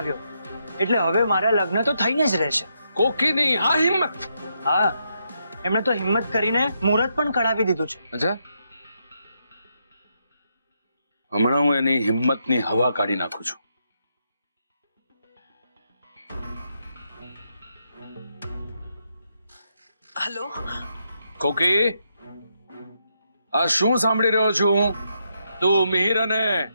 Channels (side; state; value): both; inverted; correlation -0.80